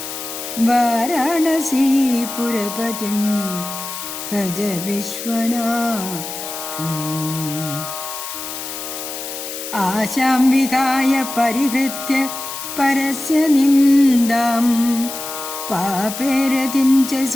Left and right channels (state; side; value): noise; left; hiss, 8 dB below the sound